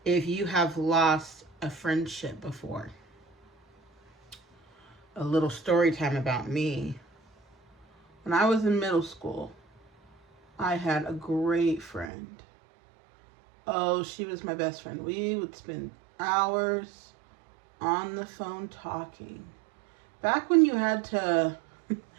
if you have lost a friendship before? A little story time about me. When I was in middle school, I had a great friend. Oh, she was my best friend. We would spend hours on the phone talking. Back when you had to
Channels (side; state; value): left; drops out; at 12.1 s